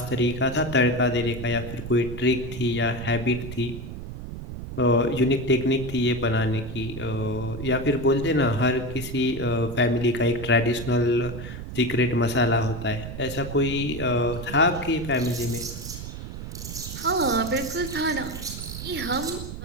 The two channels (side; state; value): right; noise; rumble, 9 dB below the sound